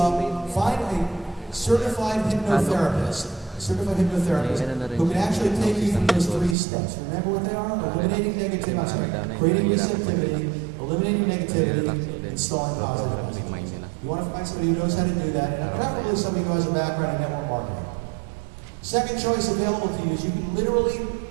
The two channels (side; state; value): left; drops out; at 6.6 s